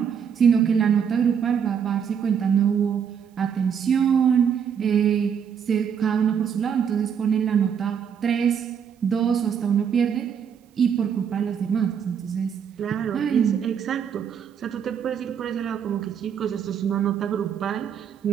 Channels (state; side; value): quieter; left; 7.6 dB